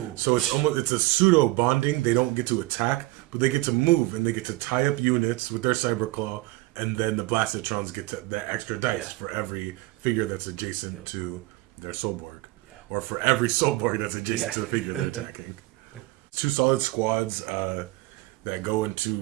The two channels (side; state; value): left; quieter; 20.1 dB